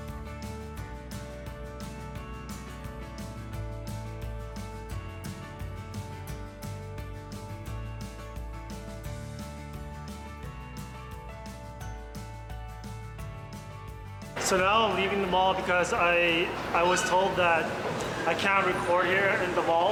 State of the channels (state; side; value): identical; both; correlation 1.00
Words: So now I'm leaving the mall because I was told that I can't record here in the mall,